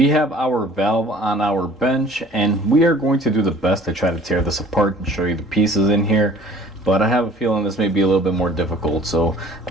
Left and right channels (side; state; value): both; normal; correlation 0.50